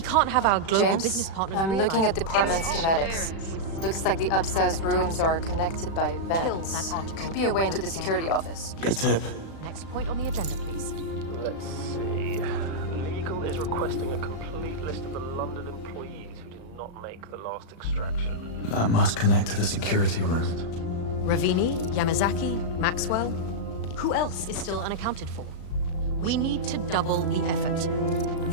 have our global business James, partners I'm looking at realize- department schematics. Looks like the upstairs rooms are connected by vents. Could be a way into the security office. Good tip. Next point on the agenda, please. Let's see. Legal is requesting a complete list of the London employees who did not make the last extraction. That must connect to the security room. Ravini, Yamazaki, Maxwell. Who else is still unaccounted for? We need to double the effort.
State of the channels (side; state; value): right; late; 36 ms